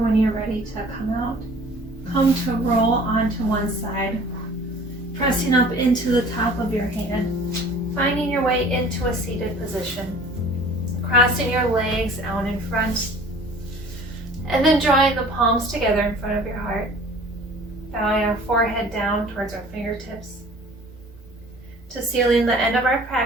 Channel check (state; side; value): normal; both; correlation 0.48